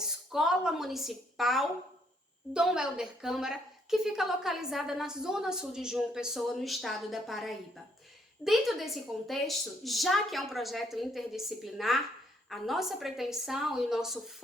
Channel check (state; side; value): normal; both; correlation 0.70